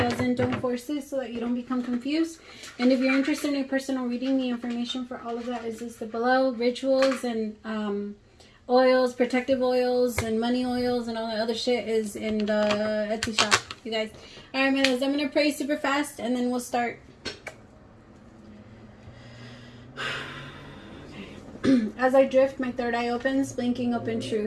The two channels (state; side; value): identical; both; correlation 1.00